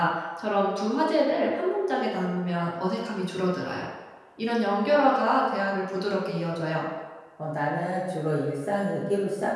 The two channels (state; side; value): identical; both; correlation 1.00